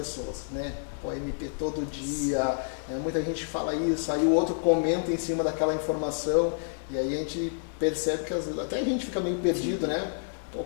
né? O MP todo dia, muita gente fala isso, aí o outro comenta em cima daquela informação, e aí a gente percebe que até a gente fica meio perdido, né? O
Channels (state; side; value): silent; right; digital silence